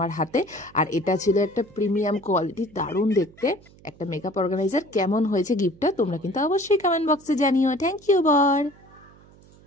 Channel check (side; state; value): right; noise; hum, 25 dB below the sound